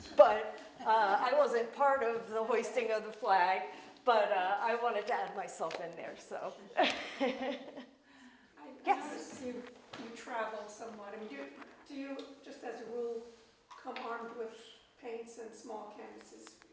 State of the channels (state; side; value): identical; both; correlation 1.00